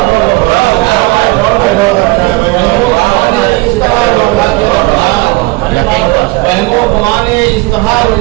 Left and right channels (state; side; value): quieter; left; 22.8 dB